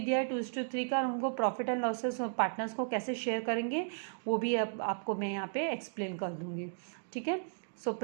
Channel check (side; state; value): left; silent; digital silence